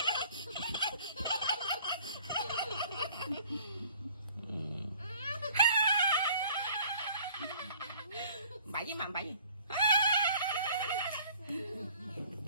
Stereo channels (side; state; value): both; inverted; correlation -0.54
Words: Bậy với mầm bậy gì?